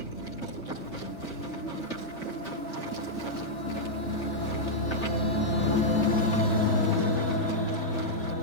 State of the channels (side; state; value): right; late; 3.4 ms